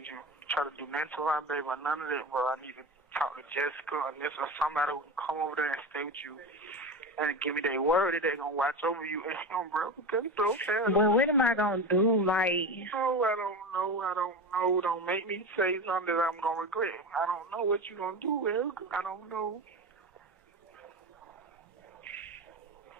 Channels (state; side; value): normal; both; correlation 0.24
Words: you to try to do nothing to my baby or none of that, bro. I need to talk to Jessica or this or somebody who can come over there and stay with you and give me their word that they're going to watch over you and him, bro. Because it's okay. Well, what am I going to do? Like, Oh, I don't know. Don't make me say something that I'm going to regret. I don't know what you're going to do, Eric. I don't know.